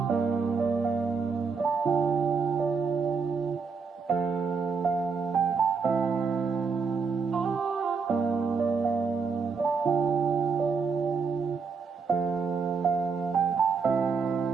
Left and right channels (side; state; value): left; quieter; 5.3 dB